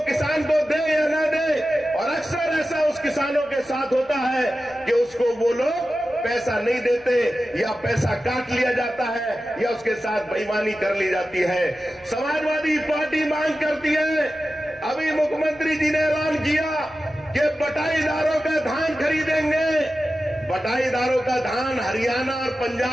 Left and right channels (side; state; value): left; noise; hum, 28 dB below the sound